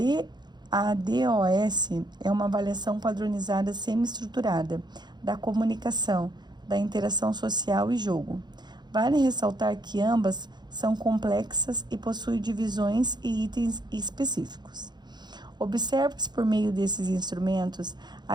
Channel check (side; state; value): left; late; 0.21 ms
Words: DOS é uma avaliação padronizada semi-estruturada da comunicação, da interação social e jogo. Vale ressaltar que ambas são complexas e possuem divisões e itens específicos. Observa-se por meio desses instrumentos